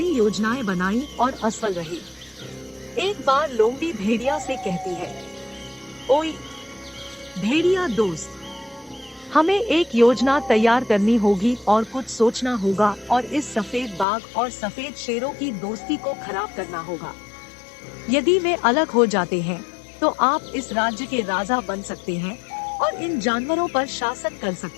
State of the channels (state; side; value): drops out; right; at 14.1 s